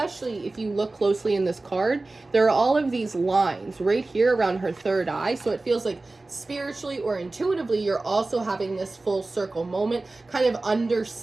if you look closely in this card. There are all of these lines right here around her third eye. So it feels like spiritually or intuitively, you're also having this full circle moment, kind of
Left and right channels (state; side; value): quieter; left; 3.2 dB